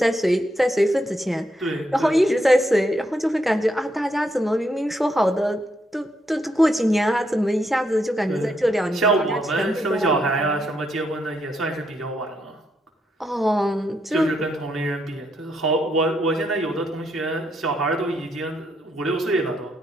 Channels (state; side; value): normal; both; correlation 0.78